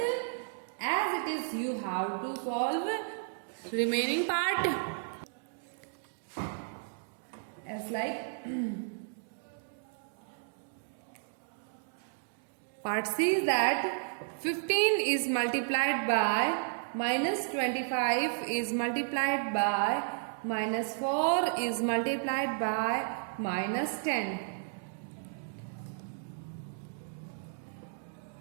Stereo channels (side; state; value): left; silent; digital silence